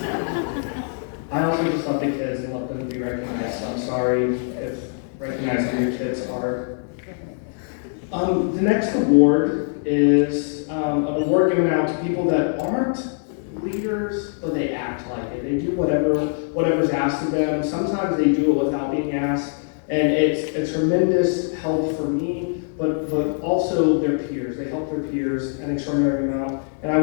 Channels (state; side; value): silent; right; 64 dB below the other